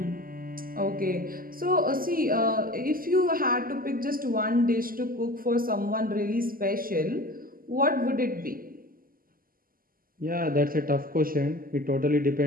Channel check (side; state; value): left; late; 0.42 ms